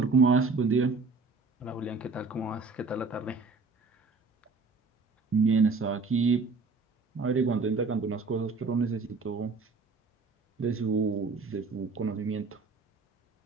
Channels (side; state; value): left; quieter; 4.2 dB